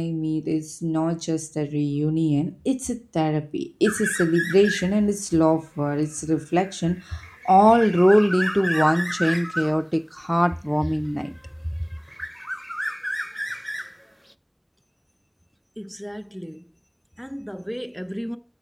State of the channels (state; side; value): identical; both; correlation 1.00